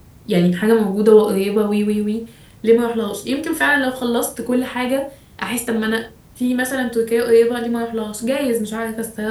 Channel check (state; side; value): identical; both; correlation 1.00